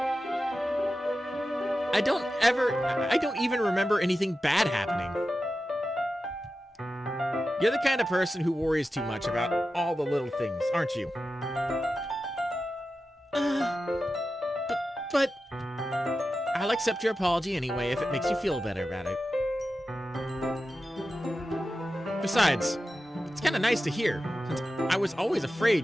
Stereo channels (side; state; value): both; normal; correlation 0.92